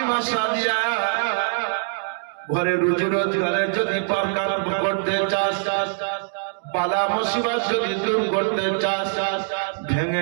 সাদিয়া, ঘরে রুজি রোজগারের যদি দরকার করতে চাস, বালা মুসিবত যদি দূর করতে চাস,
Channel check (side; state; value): left; silent; digital silence